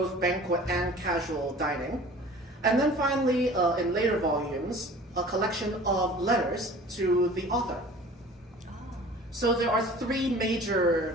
banquet and casual dining. And then finally, in later volumes, a collection of letters to the author. So there are 3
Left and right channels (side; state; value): both; normal; correlation 0.45